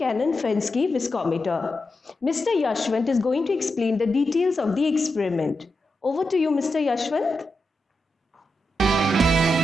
viscometer. Mr. Yashwant is going to explain the details of the experiment. Over to you, Mr. Yashwant.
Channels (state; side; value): normal; both; correlation 0.88